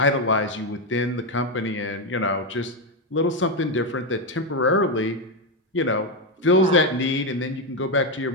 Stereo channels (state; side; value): normal; both; correlation 0.07